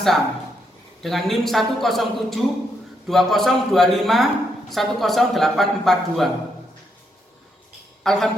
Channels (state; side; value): normal; both; correlation 0.78